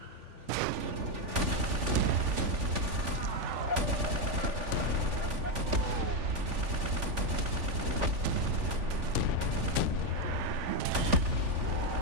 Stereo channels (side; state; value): left; late; 3.4 ms